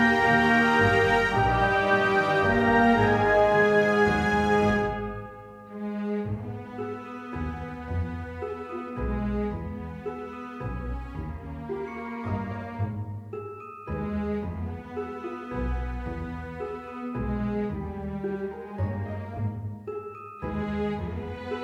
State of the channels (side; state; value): both; identical; correlation 1.00